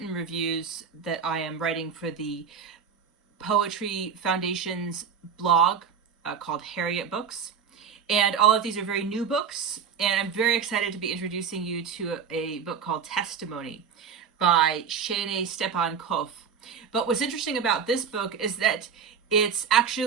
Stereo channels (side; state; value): left; quieter; 6.8 dB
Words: reviews that I am writing for the Poetry Foundation's blog called Harriet Books. And all of these are very new books, and I'm very excited to be introducing you to a book called Testimony by Shaynae Stephan Koff. But what's interesting about this book is that it's